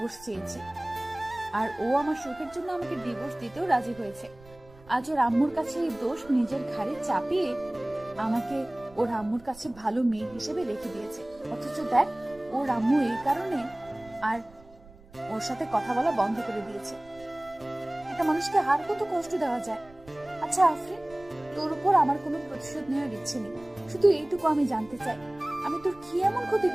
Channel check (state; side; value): noise; right; rumble, 24 dB below the sound